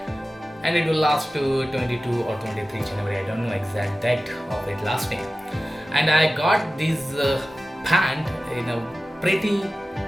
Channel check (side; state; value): both; normal; correlation 0.95